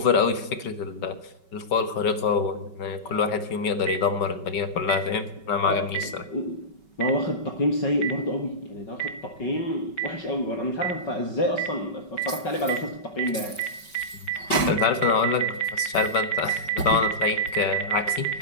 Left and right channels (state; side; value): late; right; 5.3 ms